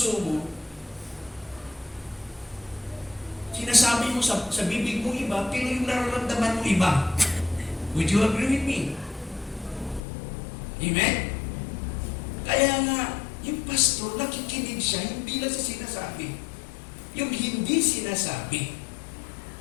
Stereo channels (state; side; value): drops out; right; at 10.0 s